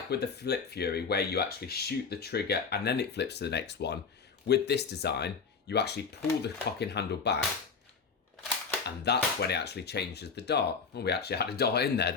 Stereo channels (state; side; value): quieter; right; 5.5 dB